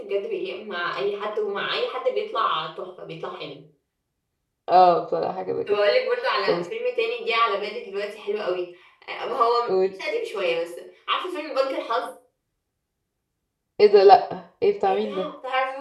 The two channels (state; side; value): identical; both; correlation 1.00